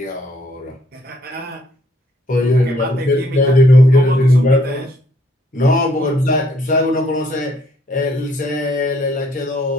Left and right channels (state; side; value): normal; both; correlation 0.66